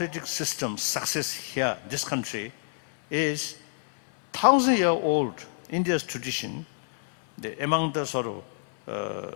system's success here, this country, is 1,000-year-old India's tradition. Among the sort of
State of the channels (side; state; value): right; silent; 60 dB below the other